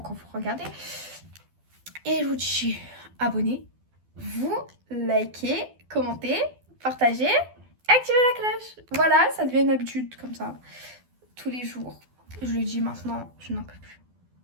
vous regardez. Et je vous dis abonnez-vous, likez, commentez, partagez, activez la cloche. Voilà, ça devient une habitude comme ça. Tous les jours. Je le dis maintenant, je n'en peux plus.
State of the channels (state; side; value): late; left; 12 ms